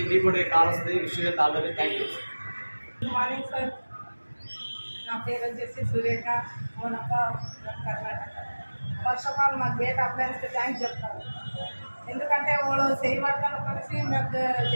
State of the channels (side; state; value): both; inverted; correlation -1.00